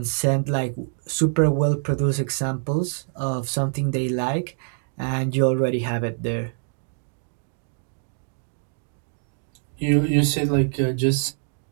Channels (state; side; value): silent; left; digital silence